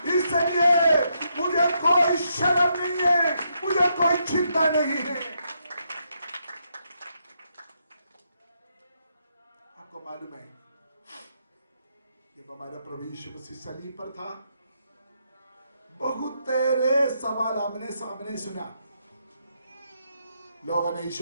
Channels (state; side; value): inverted; both; correlation -0.79